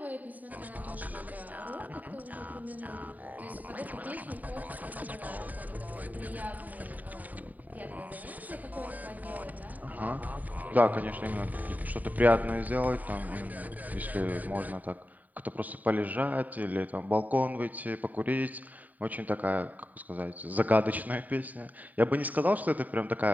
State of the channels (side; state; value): left; late; 0.078 ms